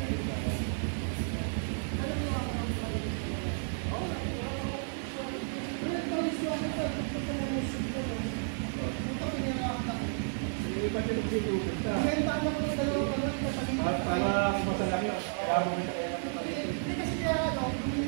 Ipat yung nagsitukot ka. Para masalang yun. Kaya mo kita kayo ng kapatid.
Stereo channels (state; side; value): silent; left; 56 dB below the other